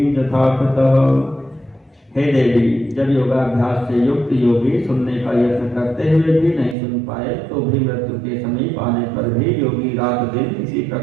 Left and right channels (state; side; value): drops out; left; at 6.8 s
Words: यथाकृतः। हे देवी, जब योगाभ्यास से युक्त योगी सुनने का यत्न करते हुए भी नहीं सुन पाए तो भी मृत्यु के समीप आने पर भी योगी रात दिन इसी